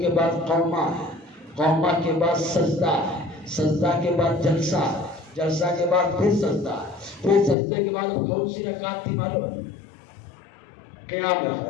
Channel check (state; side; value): drops out; right; at 7.6 s